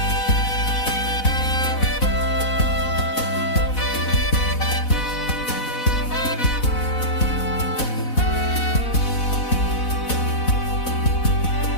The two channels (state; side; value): late; right; 4.0 ms